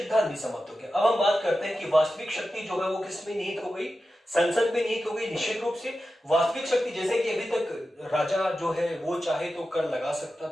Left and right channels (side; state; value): both; normal; correlation 0.92